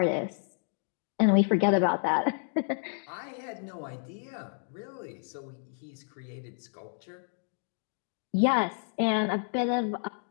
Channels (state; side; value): silent; right; 57 dB below the other